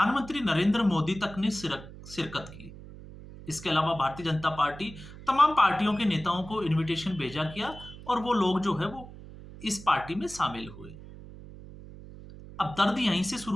नरेंद्र मोदी तक ने शिरकत की। इसके अलावा भारतीय जनता पार्टी तमाम पार्टियों के नेताओं को इनविटेशन भेजा किया और वो लोग जो है वो इस पार्टी में शामिल हुए। अब दर्द यहीं से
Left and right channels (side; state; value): right; noise; hum, 16 dB below the sound